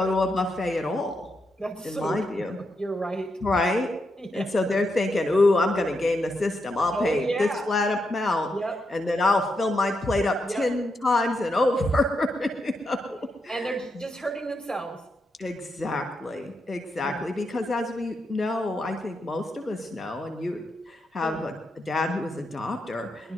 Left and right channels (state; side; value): normal; both; correlation 0.83